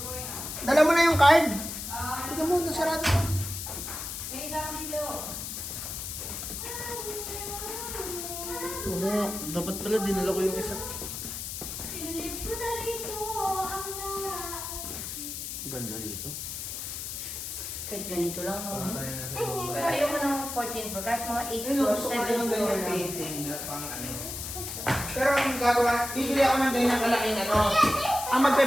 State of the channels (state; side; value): noise; left; hiss, 6 dB below the sound